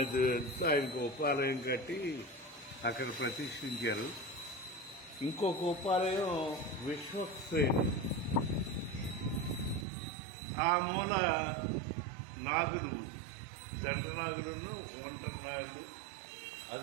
ఆయనకు ఉపాలయం కట్టి అక్కడ ప్రతిష్ఠించారు. ఇంకొక ఉపాలయం విశ్వక్సేన్, ఆ మూల నాగులు, జంట నాగులను, ఒంటరి నాగులు,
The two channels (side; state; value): left; drops out; at 9.9 s